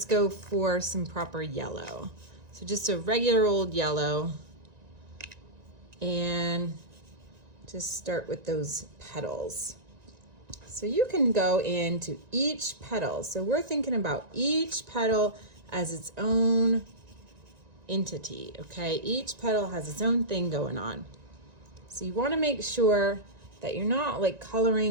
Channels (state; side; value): late; left; 1.9 ms